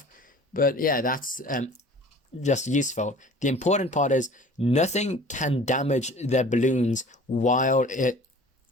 But yeah, that's just useful. The important part is nothing can damage the balloons while it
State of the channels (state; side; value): normal; both; correlation 0.46